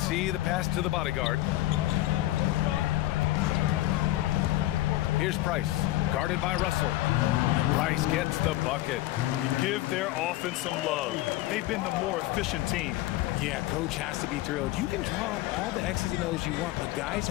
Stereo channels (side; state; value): right; quieter; 16.3 dB